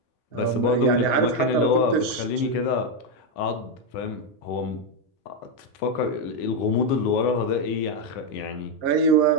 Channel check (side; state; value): right; late; 5.4 ms